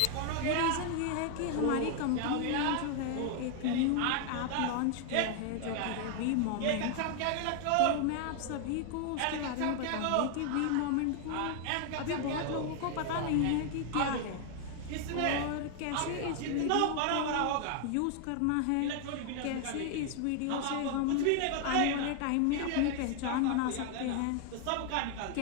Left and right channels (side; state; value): both; different; correlation 0.00